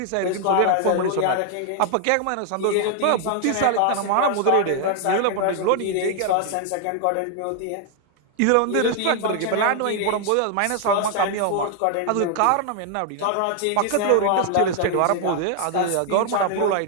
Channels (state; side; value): different; both; correlation 0.00